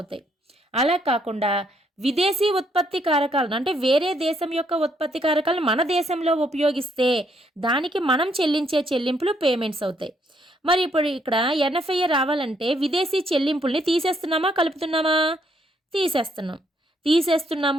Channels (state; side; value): normal; both; correlation 0.72